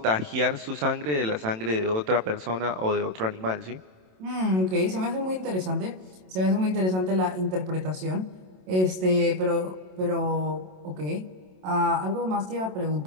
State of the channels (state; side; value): late; left; 27 ms